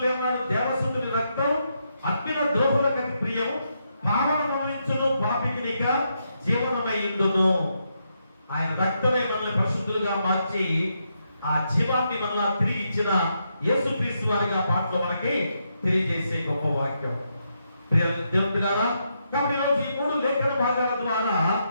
ఏమన్నాడు, దేవసుతుని రక్తం అగ్నిన ద్రోహులకు ప్రియం, పావనమనించును పాపికినిక జీవనమయ్యుండును. ఆయన రక్తమే మనల్ని పరిశుద్ధులుగా మార్చి ఆ జీవాన్ని మనల్ని తిరిగి ఇచ్చిన యేసుక్రీస్తు వారిగా పాటలో మనకి తెలియజేసే గొప్ప వాక్యం. దేవుని బిడ్డలారా, కాబట్టి ఈరోజు ఈ 3 లేఖన భాగాల ద్వారా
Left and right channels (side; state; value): both; inverted; correlation -0.81